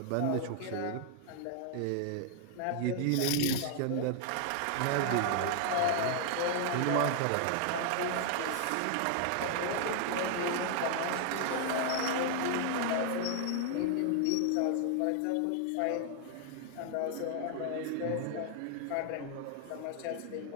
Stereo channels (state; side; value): different; both; correlation 0.00